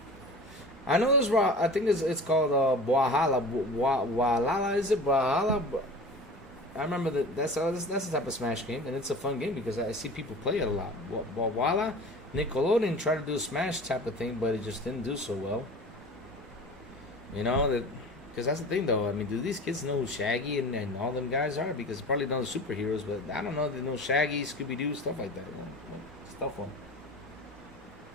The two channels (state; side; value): normal; both; correlation 0.38